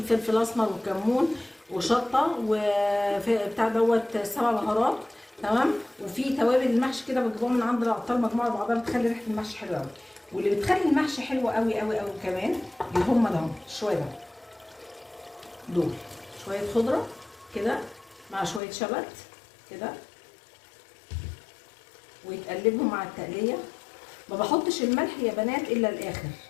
فلفل اسمر وكمون وشطه وبتاع دوت 7 بهارات، تمام؟ وفي توابل المحشي كده بتجيبوها من عند العطار مجموعه بعضها بتخلي ريحه المحشي حلوه قوي. واللي بتخلي المحشي حلو قوي قوي قوي كمان هم ده شويه ده دول شويه خضره كده مع شويه شبت كده ويتقلبهم مع التقليه. ما بحطش الملح يا بنات الا الاخر،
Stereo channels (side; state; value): right; drops out; at 18.6 s